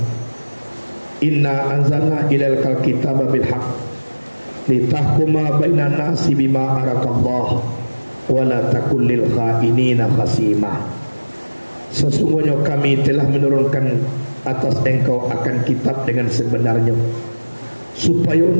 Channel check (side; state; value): both; inverted; correlation -1.00